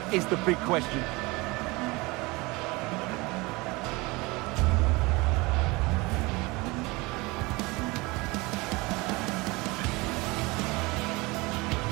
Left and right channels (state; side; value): quieter; left; 24.0 dB